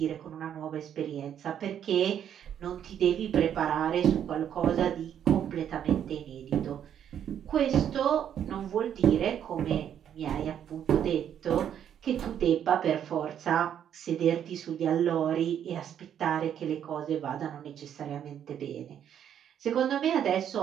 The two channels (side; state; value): left; quieter; 9.4 dB